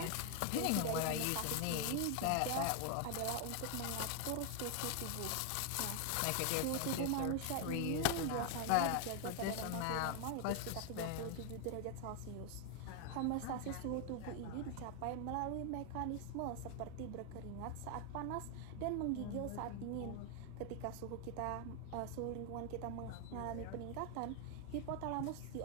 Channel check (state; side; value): different; both; correlation 0.00